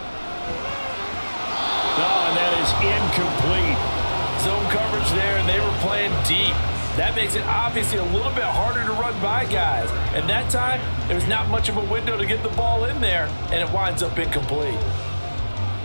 Oh, and that is incomplete. Zone coverage there, and they were playing deep. That makes it obviously a little bit harder to run by guys. And that time, there's not much of a window to get the ball in there, and it winds up incomplete.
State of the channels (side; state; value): both; inverted; correlation -1.00